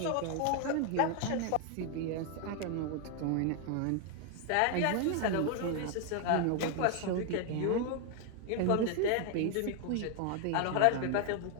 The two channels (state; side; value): different; both; correlation 0.00